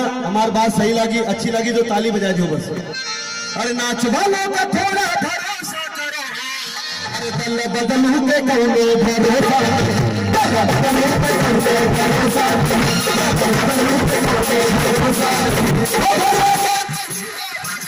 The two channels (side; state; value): both; identical; correlation 1.00